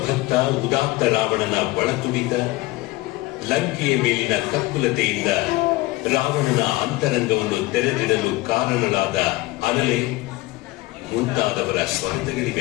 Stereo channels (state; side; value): quieter; right; 20.6 dB